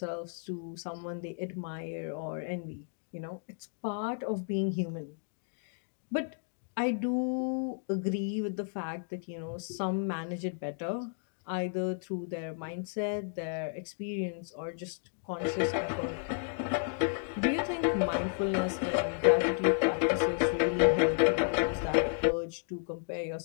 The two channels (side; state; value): right; silent; digital silence